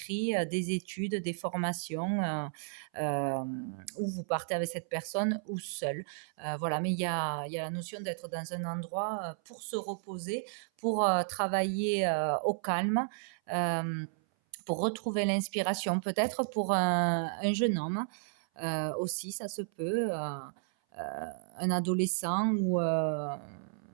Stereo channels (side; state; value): left; silent; 56 dB below the other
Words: des études, des formations, euh, où vous partez avec cette personne ou seul. Voilà, mais il y a la notion d'être dans un endroit pour se reposer, pour travailler au calme. euh, pour retrouver l'inspiration, peut-être pour un jeune homme aussi, ça se peut, un adolescent ou un